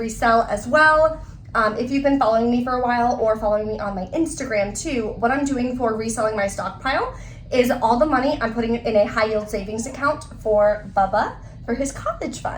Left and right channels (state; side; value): identical; both; correlation 1.00